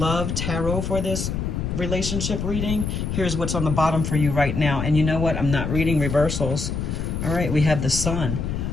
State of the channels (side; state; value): left; noise; rumble, 2 dB below the sound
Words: Tarot for this relationship reading. Here's what's on the bottom for you right now. And you know what? I'm not reading reversals. All right, we have the sun.